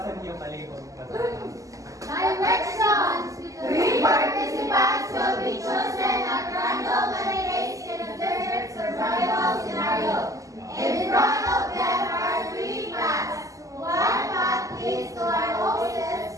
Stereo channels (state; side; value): late; left; 0.16 ms